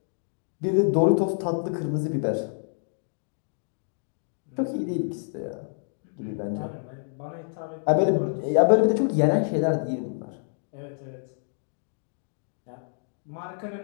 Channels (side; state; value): right; silent; digital silence